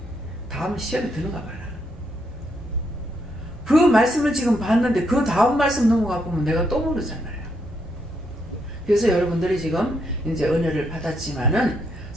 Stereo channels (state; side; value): normal; both; correlation 0.77